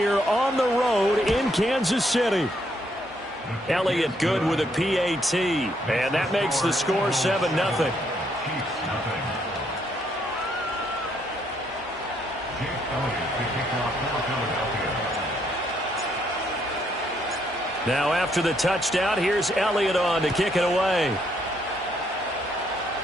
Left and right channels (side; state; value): both; normal; correlation 0.72